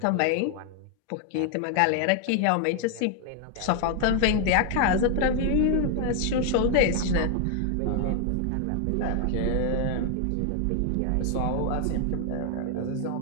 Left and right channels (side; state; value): both; different; correlation 0.00